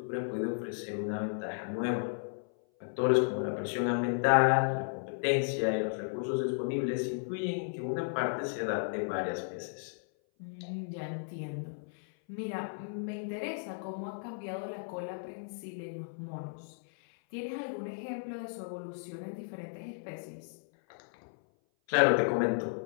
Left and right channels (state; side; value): silent; right; 55 dB below the other